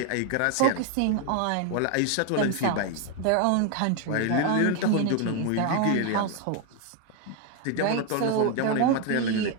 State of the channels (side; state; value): both; different; correlation 0.01